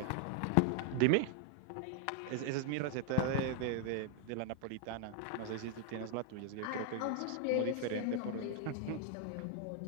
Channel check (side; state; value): both; different; correlation 0.00